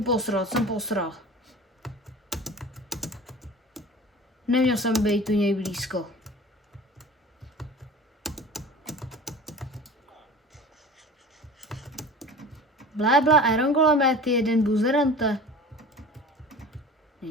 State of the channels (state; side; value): normal; both; correlation 0.39